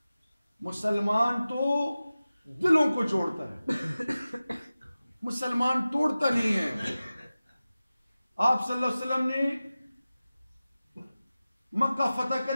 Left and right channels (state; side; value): inverted; both; correlation -0.96